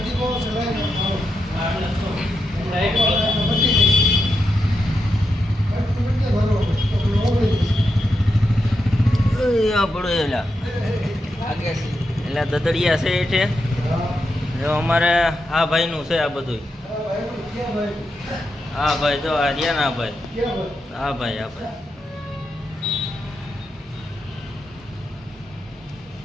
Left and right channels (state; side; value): normal; both; correlation 0.86